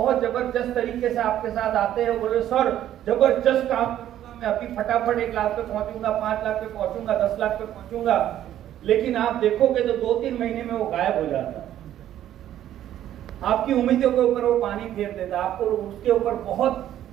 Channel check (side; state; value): left; quieter; 11.8 dB